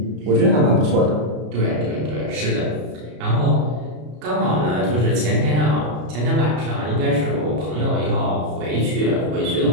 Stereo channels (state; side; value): late; left; 33 ms